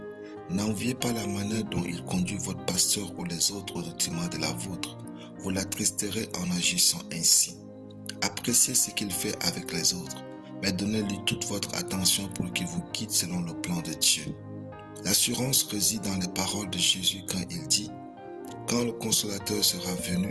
N'enviez pas la manière dont il conduit votre pasteur ou les autres au détriment de la vôtre. Vous l'attristerez en agissant ainsi. Appréciez ce qu'il fait avec les autres, mais donnez-lui toute votre attention pour qu'il vous guide selon le plan de Dieu. L'assurance réside dans les paroles de Jésus quand il dit « Quand le Consolateur sera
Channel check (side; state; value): both; identical; correlation 1.00